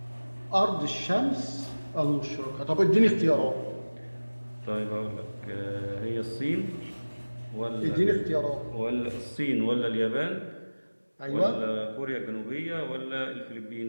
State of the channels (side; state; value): both; inverted; correlation -1.00